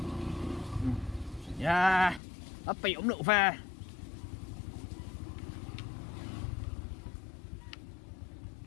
yeah ấp bị ống độ về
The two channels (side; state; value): right; drops out; at 2.2 s